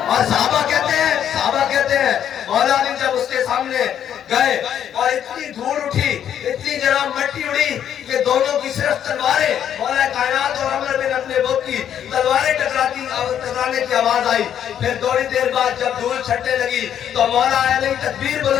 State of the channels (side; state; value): right; quieter; 9.7 dB